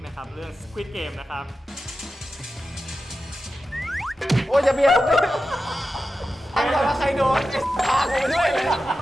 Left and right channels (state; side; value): normal; both; correlation 0.92